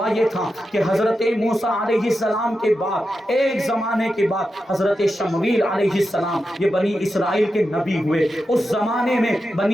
یہ تھا کہ حضرت موسیٰ علیہ السلام کے بعد ایک زمانے کے بعد حضرت شمویل علیہ السلام یہ بنی اسرائیل کے نبی ہوئے. اس زمانے میں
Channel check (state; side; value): normal; both; correlation 0.89